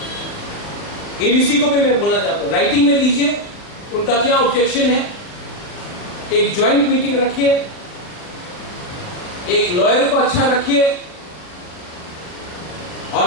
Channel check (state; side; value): late; right; 40 ms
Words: एडीसी को भी मैं बोलना चाहता हूं, राइटिंग में दीजिए उनका क्या ऑब्जेक्शन है। एक ज्वाइंट मीटिंग रखिए, एक लॉयर को अच्छा रखिए, और